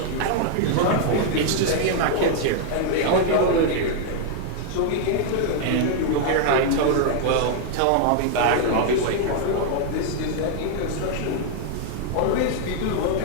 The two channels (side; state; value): both; different; correlation 0.00